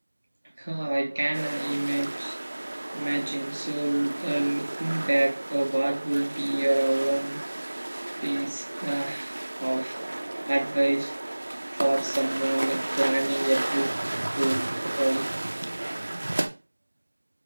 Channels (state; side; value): inverted; both; correlation -1.00